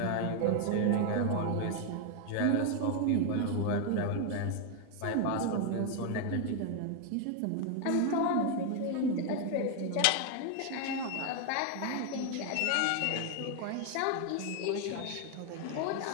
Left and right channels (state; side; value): different; both; correlation 0.00